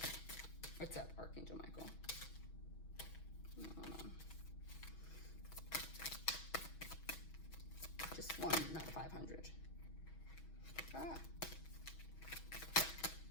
What's up, Archangel Michael? No. Just one, not 500. Ah.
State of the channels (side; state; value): right; late; 6.2 ms